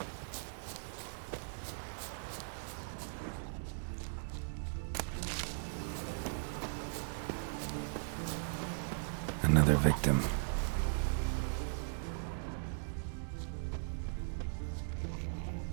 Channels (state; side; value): silent; left; digital silence